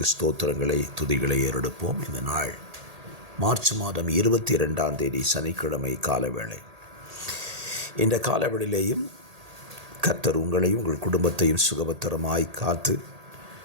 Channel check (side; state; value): left; late; 1.8 ms